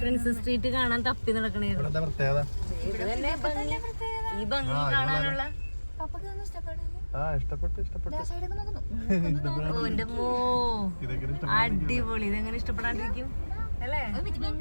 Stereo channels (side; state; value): both; inverted; correlation -1.00